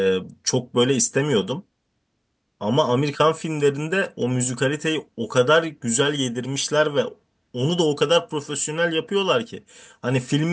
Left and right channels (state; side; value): identical; both; correlation 1.00